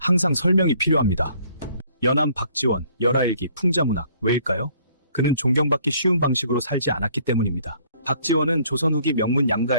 설명이 필요합니다. 연암 박지원, 열하일기, 풍자문학. 왜일까요? 그는 존경받기 쉬운 방식으로 살지 않았기 때문입니다. 박지원은 조선 후기 명문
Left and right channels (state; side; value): inverted; both; correlation -0.61